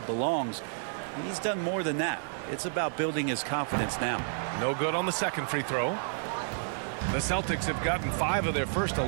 he's done more than that. It's about building his confidence now. No good on the second free throw. The Celtics have gotten 5 of their first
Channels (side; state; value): left; silent; digital silence